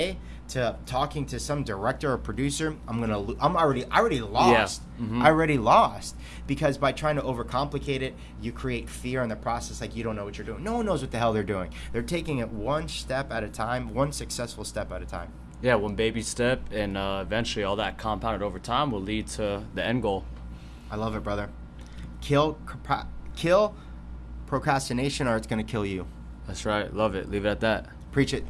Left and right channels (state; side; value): identical; both; correlation 1.00